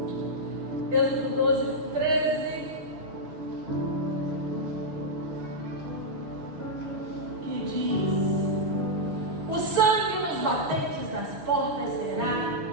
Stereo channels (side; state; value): left; late; 6.6 ms